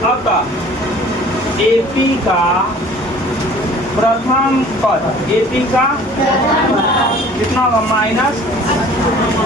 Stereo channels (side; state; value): both; normal; correlation 0.49